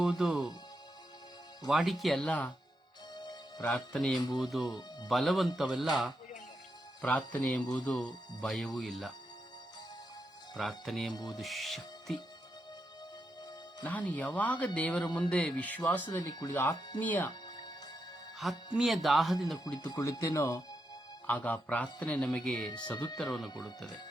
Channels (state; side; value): normal; both; correlation 0.84